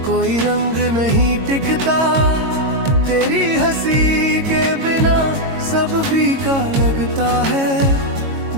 कोई रंग नहीं टिकता। तेरी हंसी के बिना सब फीका लगता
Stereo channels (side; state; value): left; late; 22 ms